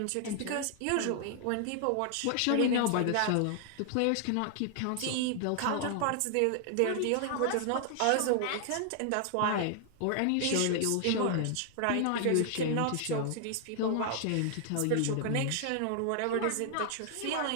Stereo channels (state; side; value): different; both; correlation 0.00